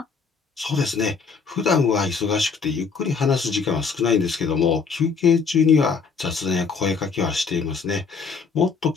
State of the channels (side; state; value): right; quieter; 5.2 dB